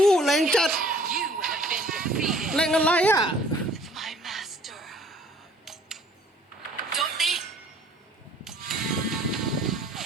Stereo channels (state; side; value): normal; both; correlation 0.55